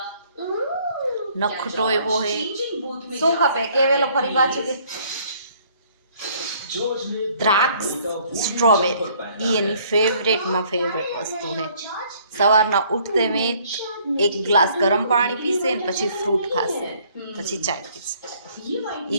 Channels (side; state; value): both; inverted; correlation -0.61